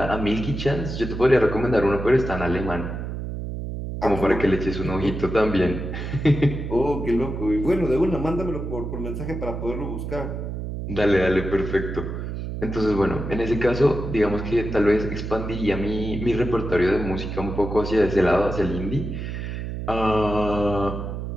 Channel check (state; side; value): noise; right; hum, 5 dB below the sound